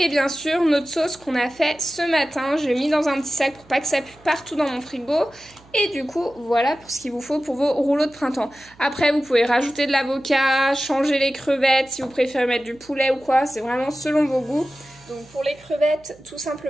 bien sûr, notre sauce qu'on a fait ce matin. Je l'ai mis dans un petit sac pour pas que ça pue partout dans mon frigo. Et du coup, voilà pour ce qu'il vous faut pour vos rouleaux de printemps. Après, vous pouvez rajouter de l'avocat, changer les crevettes si vous préférez mettre du poulet ou quoi. C'est vraiment selon vos goûts. Donc pour les crevettes, tout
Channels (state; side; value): noise; right; hum, 27 dB below the sound